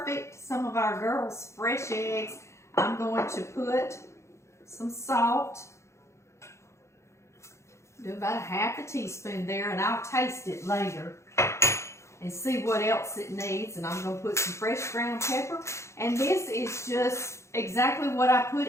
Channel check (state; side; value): late; right; 0.14 ms